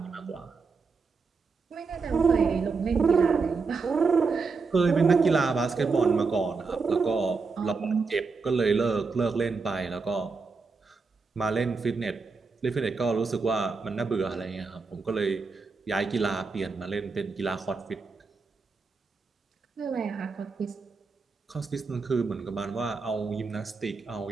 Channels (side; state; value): left; quieter; 4.6 dB